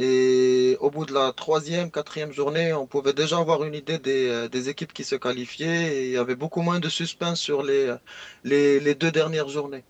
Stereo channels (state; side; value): identical; both; correlation 1.00